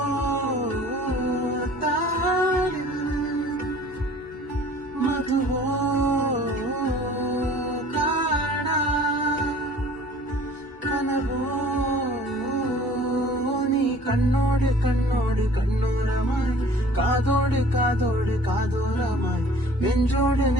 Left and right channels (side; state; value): both; normal; correlation 0.49